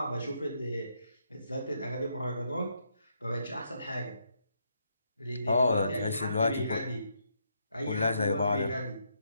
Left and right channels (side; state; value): both; inverted; correlation -0.77